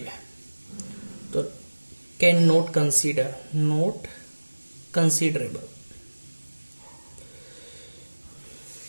है, तो कैन नॉट कंसीडरेबल।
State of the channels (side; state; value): both; inverted; correlation -1.00